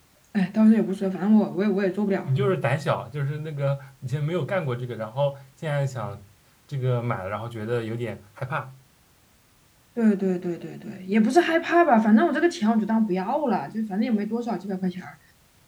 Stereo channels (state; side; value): identical; both; correlation 1.00